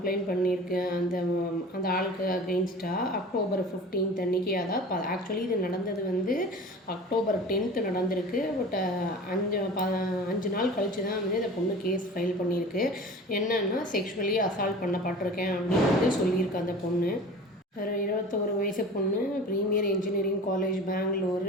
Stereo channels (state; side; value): normal; both; correlation 0.38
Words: பண்ணியிருக்கு அந்த ஆளுக்கு அகெயின்ஸ்டாக. October 15 அன்றைக்கி. அதாவது ஆக்சுவலி இது நடந்தது வந்து October 10 நடந்திருக்கு. பட் 5 நாள் கழித்து தான் வந்து இந்த பொண்ணு கேஸ் ஃபைல் பண்ணியிருக்கு. என்னன்னா செக்ஷுவலி அசால்ட் பண்ணப்பட்டிருக்கேன் அப்படின்னு வந்து சொல்லியிருக்கு அந்த பொண்ணு. ஒரு 21 வயசு பொண்ணு, ப்ரீமியர் இன்ஜினியரிங் காலேஜ்